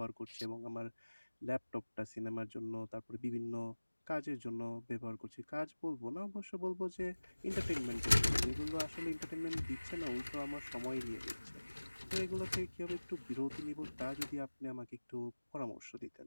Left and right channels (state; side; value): inverted; both; correlation -1.00